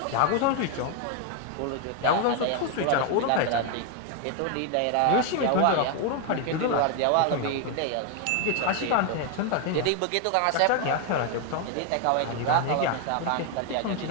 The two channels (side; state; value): both; different; correlation 0.01